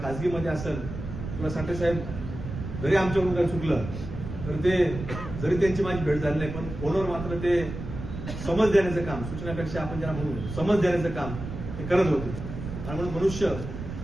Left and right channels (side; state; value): right; noise; rumble, 8 dB below the sound